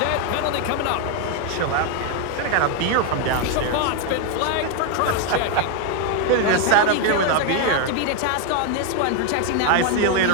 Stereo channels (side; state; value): both; different; correlation 0.01